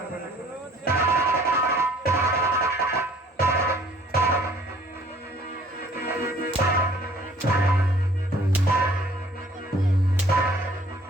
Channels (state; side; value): normal; both; correlation 0.56